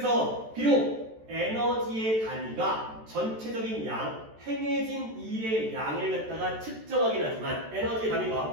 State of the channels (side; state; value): left; late; 14 ms